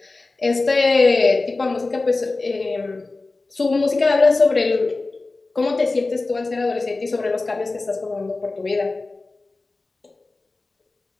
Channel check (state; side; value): quieter; right; 3.4 dB